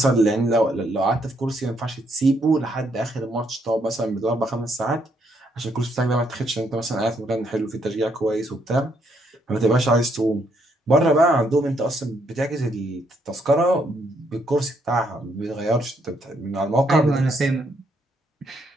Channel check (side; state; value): both; normal; correlation 0.73